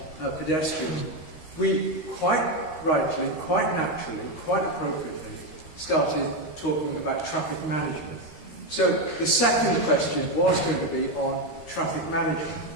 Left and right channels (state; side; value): late; right; 13 ms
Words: pedestrians, we quite rightly, quite naturally, quite appropriately started talking about traffic management. So the second question was going to be on traffic management.